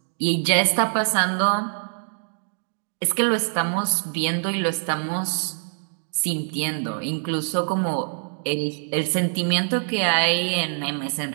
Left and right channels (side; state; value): left; silent; 62 dB below the other